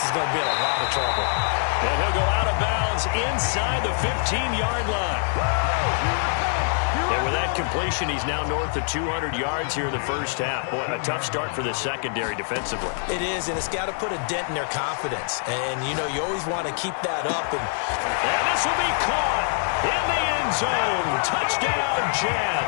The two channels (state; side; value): silent; right; digital silence